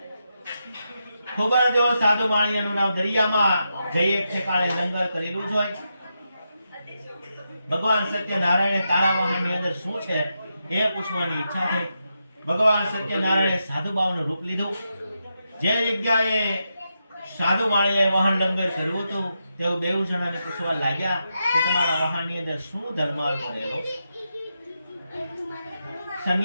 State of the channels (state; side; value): inverted; both; correlation -0.86